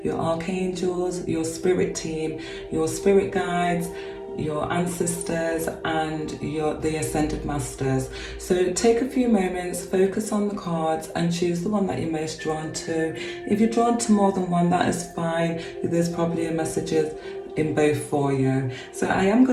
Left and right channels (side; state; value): both; identical; correlation 1.00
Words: your archangels, your spirit team, your spirit guides, your ancestors, and the ascended masters. So take a few moments, focus on the cards and choose the one that you're most drawn to. If you're drawn to more than one, that is fine. There's probably a messages in both for you. So I am